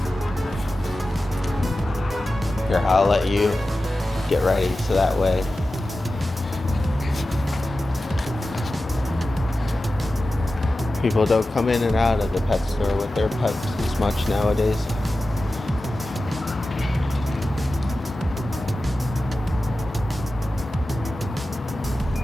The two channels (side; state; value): both; normal; correlation 0.94